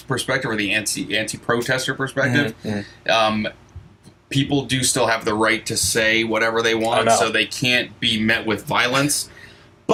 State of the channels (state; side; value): identical; both; correlation 1.00